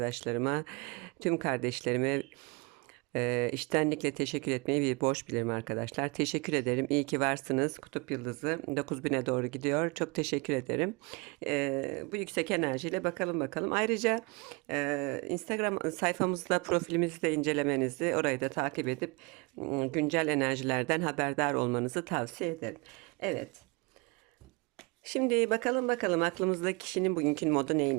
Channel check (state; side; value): quieter; left; 28.0 dB